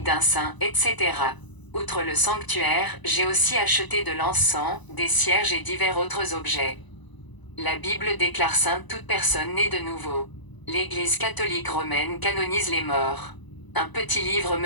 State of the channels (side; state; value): right; late; 1.0 ms